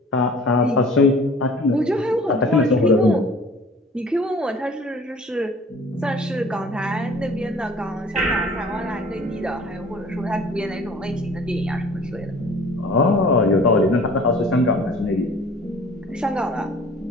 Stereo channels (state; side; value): normal; both; correlation 0.48